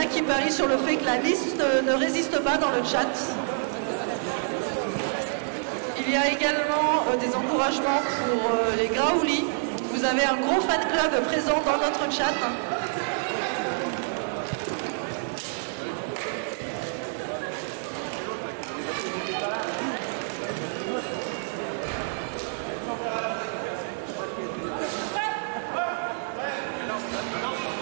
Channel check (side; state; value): left; silent; digital silence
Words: qui parient sur le fait que la liste ne résiste pas dans le chat. Il y a également des encouragements pour les Graouli. Vous avez un gros fan club présent dans notre chat.